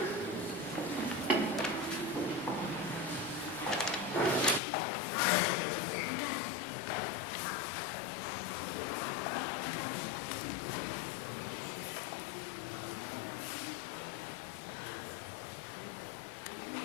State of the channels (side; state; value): right; drops out; at 4.6 s